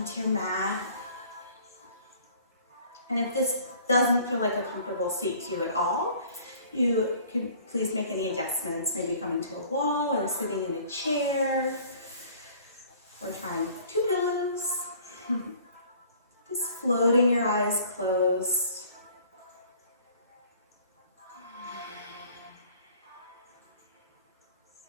your mat. And if this doesn't feel like a comfortable seat to you at all, you can please make any adjustments, maybe coming to a wall or sitting in a chair or trying 2 pillows. Just floating your eyes closed.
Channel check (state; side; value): inverted; both; correlation -0.52